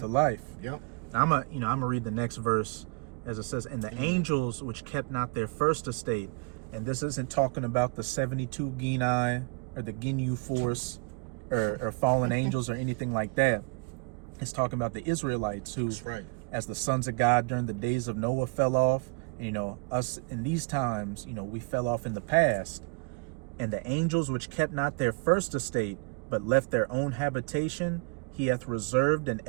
of life. Yep. I'm gonna read the next verse, as it says, and the angels which kept not their first estate. And this isn't talking about the 72 Genii or the Ginyu force or fallen angels or anything like that. It's talking about the Israelites who, as the sons of God during the days of Noah fell off. And, you know, us in these times, you know, we fell off in the past. And the angels which kept not their first estate, but left their own habitation, he hath reserved in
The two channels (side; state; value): left; quieter; 34.2 dB